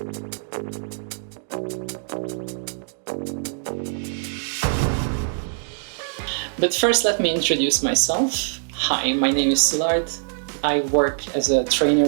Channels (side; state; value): left; silent; digital silence